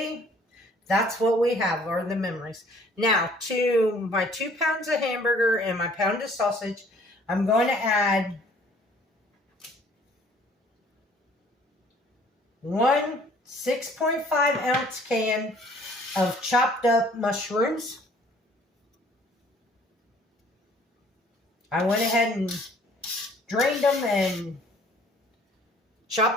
that's what we have, are the memories. Now, to my 2 pounds of hamburger and my pound of sausage, I'm going to add 1 6.5 ounce can of chopped up mushrooms. I went ahead and drained them and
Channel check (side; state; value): both; normal; correlation 0.56